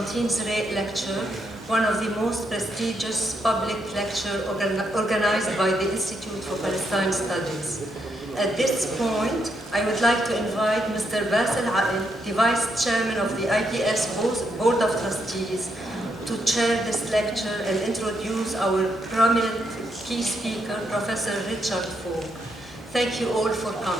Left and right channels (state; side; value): normal; both; correlation 0.78